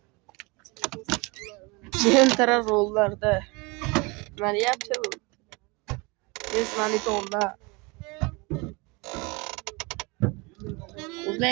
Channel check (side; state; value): left; quieter; 26.9 dB